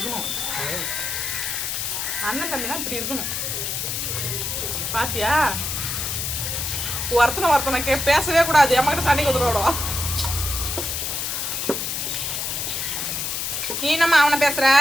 அண்ணன் தம்பினா இப்படி இருக்கணும். பாத்தியா? ஒருத்தனை பேசவே கூடாது. அம்மாக்கிட்ட சண்டைக்கு வந்துடுவோம். நீ என்னம்மா அவனை பேசுற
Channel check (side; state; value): left; noise; hiss, 2 dB below the sound